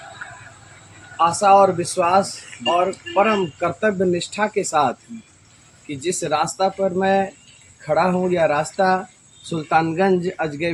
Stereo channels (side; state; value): both; identical; correlation 1.00